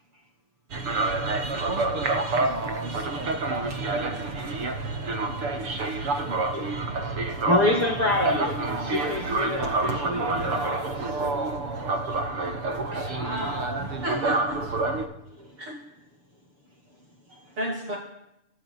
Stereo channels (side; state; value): left; late; 6.9 ms